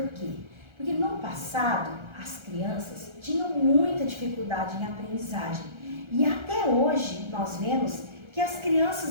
quê? Porque no passado, as crianças tinham muita dificuldade em aprendizagem. E até hoje, nós vemos que as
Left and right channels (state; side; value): late; left; 1.3 ms